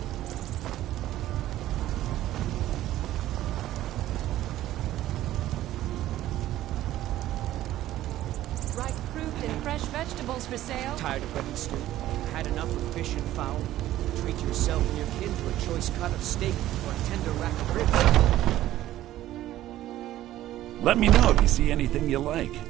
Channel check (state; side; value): quieter; left; 14.1 dB